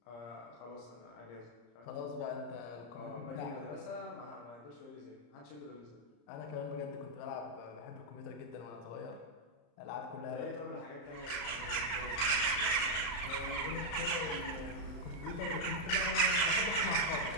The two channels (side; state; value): right; late; 34 ms